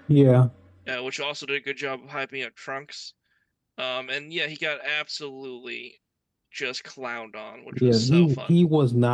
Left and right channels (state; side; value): identical; both; correlation 1.00